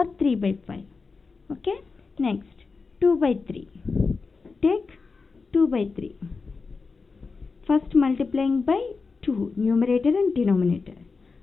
3 by 5. Okay, next 2 by 3. Take 2 by 3. First multiplying by 2, numerator and denominator.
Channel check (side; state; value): right; quieter; 4.5 dB